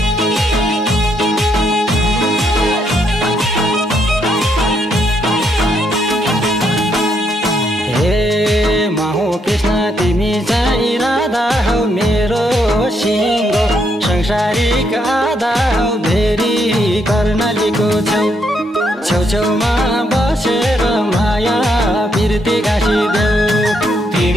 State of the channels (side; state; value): both; normal; correlation 0.75